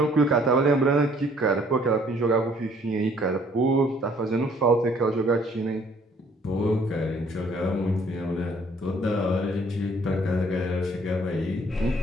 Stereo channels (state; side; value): normal; both; correlation 0.61